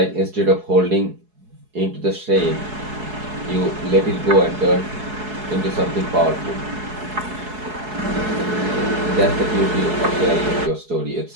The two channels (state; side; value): late; left; 4.7 ms